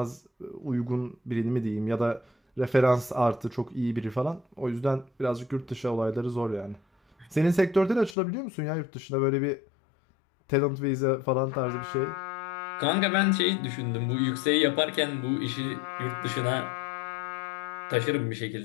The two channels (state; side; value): drops out; right; at 8.2 s